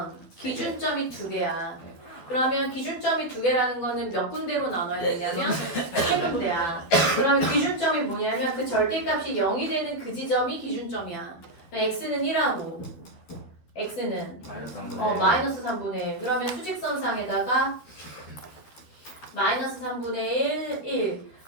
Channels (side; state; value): right; late; 12 ms